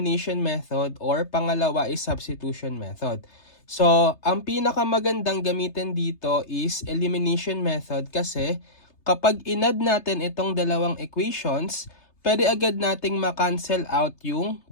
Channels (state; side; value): late; right; 3.3 ms